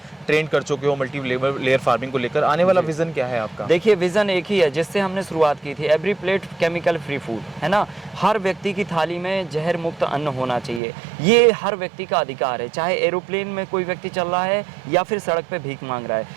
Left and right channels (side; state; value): left; drops out; at 10.8 s